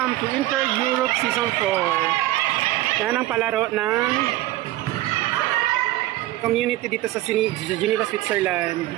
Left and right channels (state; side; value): quieter; left; 16.0 dB